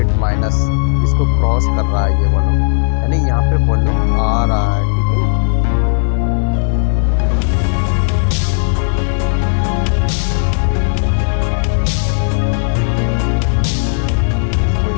माइनस इसको क्रॉस कर रहा है ये वॉल्यूम, यानी यहाँ पे वॉल्यूम आ रहा है। ठीक है,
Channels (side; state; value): right; silent; digital silence